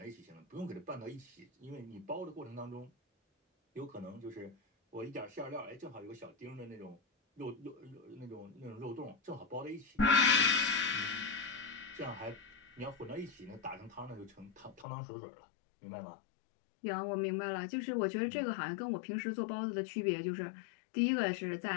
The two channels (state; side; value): drops out; right; at 14.9 s